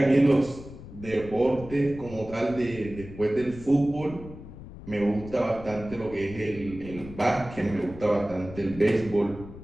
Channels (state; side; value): noise; left; rumble, 14 dB below the sound